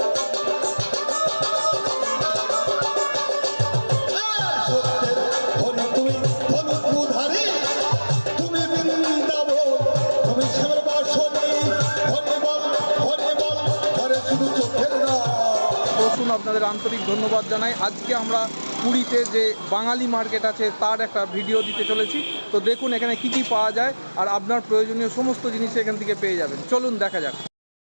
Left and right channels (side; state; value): both; inverted; correlation -1.00